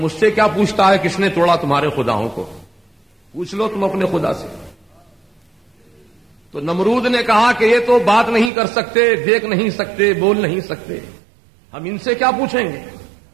سے کیا پوچھتا ہے کس نے توڑا تمہارے خداؤں کو، پوچھ لو تم اپنے خدا سے. تو نمرود نے کہا کہ یہ تو بات نہیں کر سکتے، دیکھ نہیں سکتے، بول نہیں سکتے، ہم ان سے کیا پوچھیں گے.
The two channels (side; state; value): left; drops out; at 8.5 s